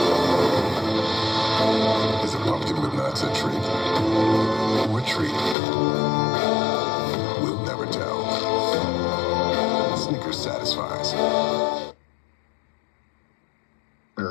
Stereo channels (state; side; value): drops out; right; at 5.6 s